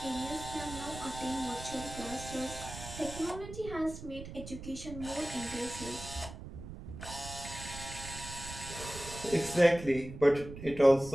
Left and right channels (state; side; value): noise; right; rumble, 11 dB below the sound